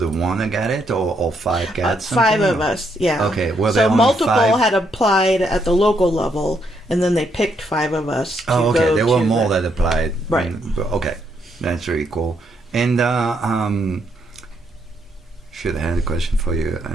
one that got it, or 5 got something? 5 of us, yeah. Okay, well, there so are only multiple 5? had applied at the local level, and then they picked 5 of us to Oh, okay. go There were to more the- that applied. Right. Okay. That's very cool. And should have had a question for you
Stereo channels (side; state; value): both; normal; correlation 0.75